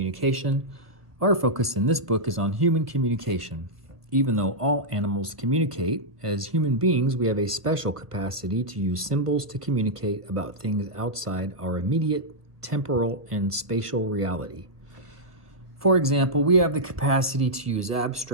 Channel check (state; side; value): late; left; 1.3 ms